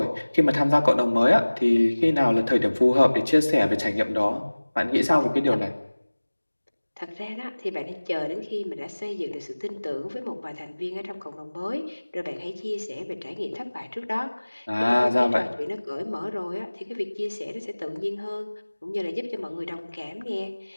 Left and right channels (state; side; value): inverted; both; correlation -1.00